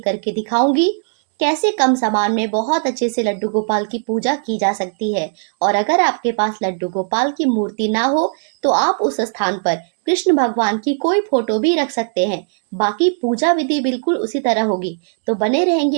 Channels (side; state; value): left; silent; digital silence